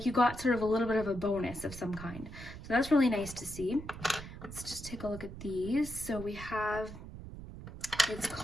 you got sort of a little bit of a bonus of some kind. So that's really nice to see. Let's just take a look at these. So we have, it's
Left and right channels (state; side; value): noise; right; rumble, 12 dB below the sound